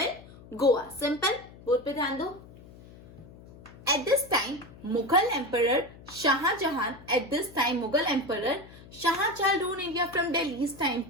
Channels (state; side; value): noise; left; hum, 20 dB below the sound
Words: Goa. Simple, board पे ध्यान दो। At this time Mughal emperor Shahjahan Shahjahan rule India from Delhi. इस टाइम